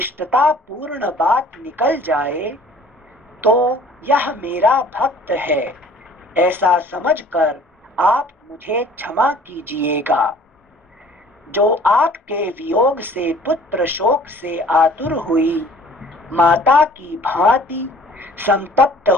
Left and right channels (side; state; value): both; normal; correlation 0.51